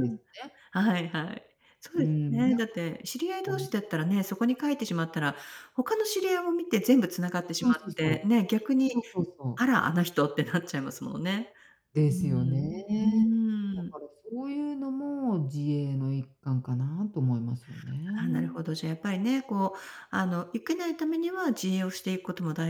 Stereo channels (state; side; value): identical; both; correlation 1.00